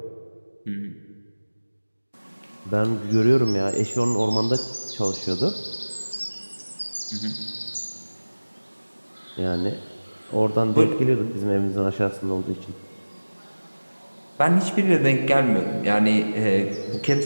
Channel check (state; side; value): inverted; both; correlation -1.00